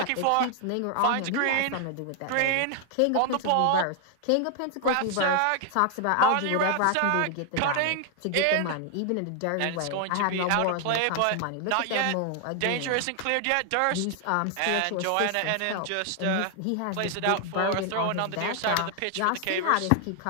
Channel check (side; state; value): both; different; correlation 0.00